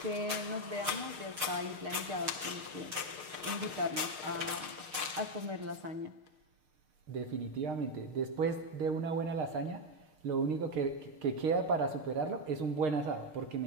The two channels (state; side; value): late; left; 6.5 ms